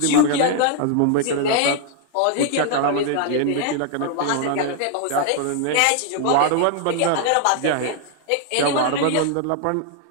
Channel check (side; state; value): both; different; correlation 0.00